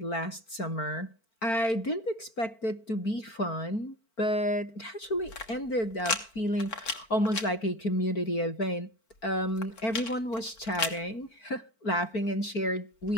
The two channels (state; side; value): late; right; 4.5 ms